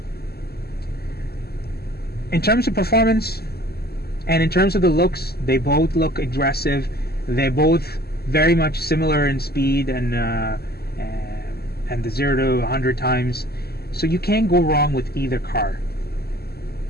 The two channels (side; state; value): right; late; 0.46 ms